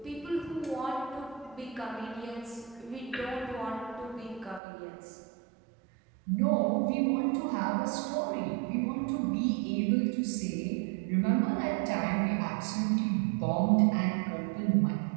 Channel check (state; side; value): drops out; left; at 4.6 s